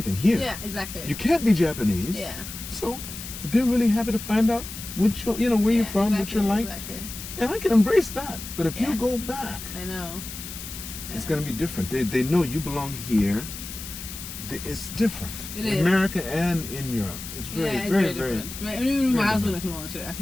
here. Yeah, exactly. You can't be Japanese. Yeah. So they're really happy to find out where you're from, what you're like. Exactly. And I can embrace that. But if you Yeah. go back, I know. it's going to be different. They know you belong here. It's different. It in is. America and in Europe. It's very, It's very, different. very. And even my very husband different. acknowledged it. I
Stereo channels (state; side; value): noise; left; hiss, 10 dB below the sound